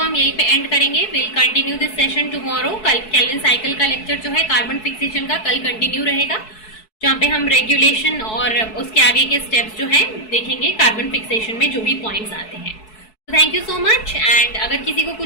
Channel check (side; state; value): right; late; 4.6 ms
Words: हम यहीं पे एंड करेंगे. Will continue this session tomorrow. कल केल्विन साइकिल का लेक्चर जो है कार्बन फिक्सेशन का कल कंटिन्यू रहेगा, जहाँ पे हम रेगुलेशन और उसके आगे के स्टेप्स जो हैं देखेंगे कार्बन फिक्सेशन में जो भी पॉइंट्स आते हैं. तो thank you so much. And अगर किसी को